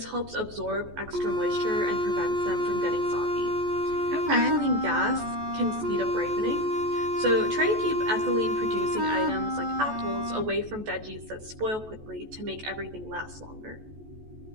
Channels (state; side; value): late; left; 14 ms